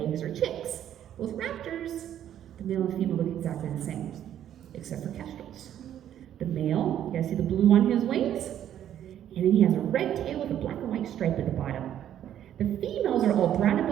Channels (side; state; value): left; quieter; 10.8 dB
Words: or chicks. With raptors, the male and female look exactly the same, except for kestrels. The male, you guys see the blue on his wings? And then he has a red tail with a black and white stripe at the bottom. The females are all brown and